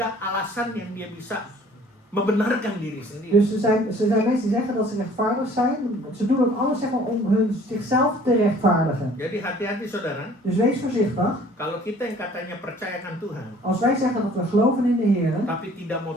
alasan yang dia bisa membenarkan diri sendiri. Dus er zijn mensen die zeggen dat ze rechtvaardig zijn. Ze doen ook alles zeg maar, om zichzelf te rechtvaardigen. Jadi hati-hati saudara, Dus wees voorzichtig. kalau kita yang katanya percayakan Tuhan, Als wij zeggen dat we geloven in de Heer, tapi tidak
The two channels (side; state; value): both; normal; correlation 0.53